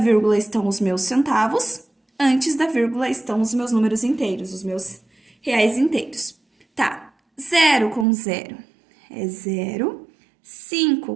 estão os meus centavos, antes da vírgula estão os meus números inteiros, os meus reais inteiros. Tá, 0 com 0 é 0,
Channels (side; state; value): left; drops out; at 8.1 s